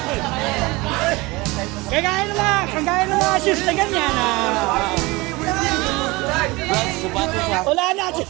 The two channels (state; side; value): quieter; left; 22.9 dB